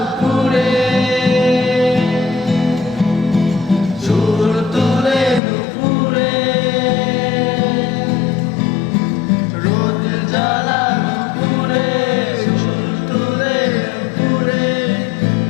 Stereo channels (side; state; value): right; drops out; at 5.4 s